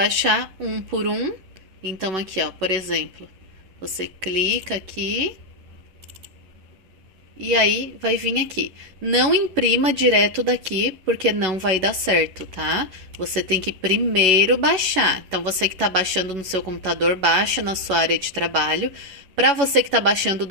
um por um. Então aqui, ó, por exemplo, você clica aqui e aí vai vir aqui. Não imprima direto daqui, porque não vai dar certo, tá? Você tem que primeiro baixar. Então, você que está baixando no seu computador, baixa na sua área de trabalho. Para você que está baixando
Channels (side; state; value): left; late; 11 ms